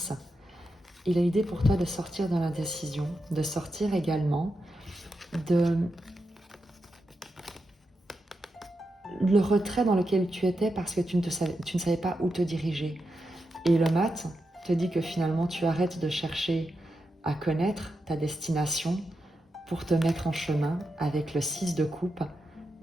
Il a l'idée pour toi de sortir de l'indécision, de sortir également de le retrait dans lequel tu étais parce que tu ne savais pas où te diriger. Et le mat te dit que finalement tu arrêtes de chercher à connaître ta destination pour te mettre en chemin avec le 6 de coupe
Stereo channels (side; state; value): both; normal; correlation 0.87